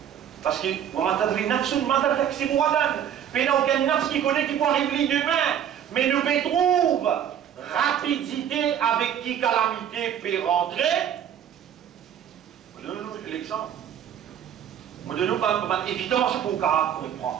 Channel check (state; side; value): quieter; left; 9.5 dB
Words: parce que mais n'a aucun nafs qui connaît qui peut arriver demain, mais nous trouve rapidité avec qui calamité peut rentrer. Donnez-nous l'exemple. Donnez-nous une évidence pour comprendre.